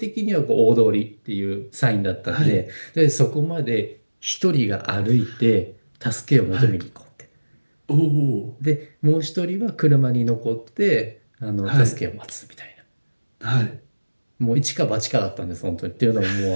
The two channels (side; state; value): both; inverted; correlation -1.00